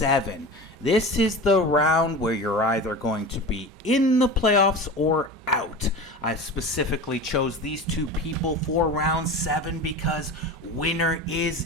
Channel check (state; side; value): normal; both; correlation 0.31